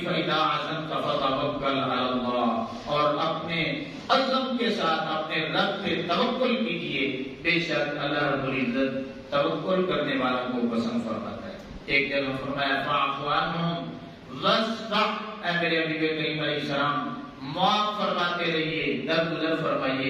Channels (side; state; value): both; identical; correlation 1.00